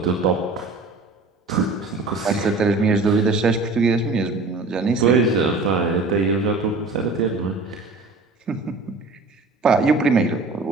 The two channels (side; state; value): left; quieter; 3.6 dB